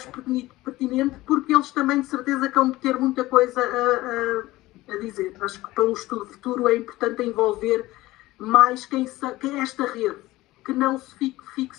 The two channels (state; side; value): quieter; right; 18.1 dB